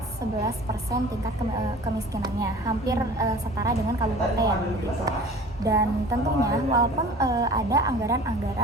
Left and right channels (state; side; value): normal; both; correlation 0.43